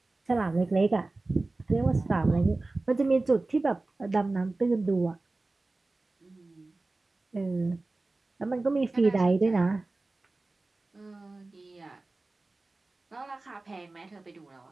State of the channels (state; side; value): quieter; left; 3.2 dB